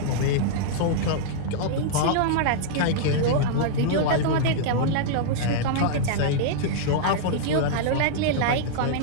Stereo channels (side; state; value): both; different; correlation -0.02